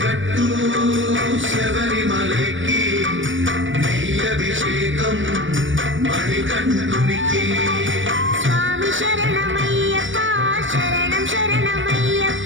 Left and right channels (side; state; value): left; late; 0.56 ms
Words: కట్టు శబరిమలకి నెయ్యభిషేకం మణికంఠునికి స్వామి శరణమయ్యప్ప శరణం